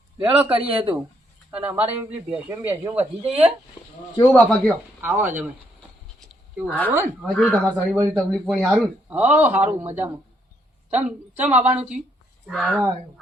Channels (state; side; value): normal; both; correlation 0.73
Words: લેડો કરીએ તું અને અમારે પેલી ભેંસો વધી જઈએ. કેવું બાપા કયો? આવો જમે કેવું સારું ને? હા કેવું તમારે સારી બધી તકલીફ પણ સારું ને? હો સારું મજામાં. ચમ આવવાનું થયું? લેવા આવ્યો.